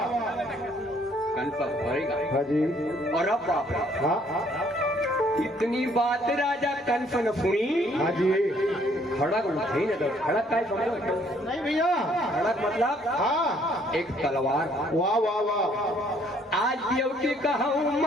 कंफर्म होएगा। हाँ जी और अब बाप रे, हाँ इतनी बात राजा कंस न सुनी, हाँ जी। खड़क उठे न दो, खड़क का समझो, नहीं भैया। खड़क मतलब हाँ एक तलवार। वाह वाह वाह। आज देवती कहूँ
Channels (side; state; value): both; normal; correlation 0.64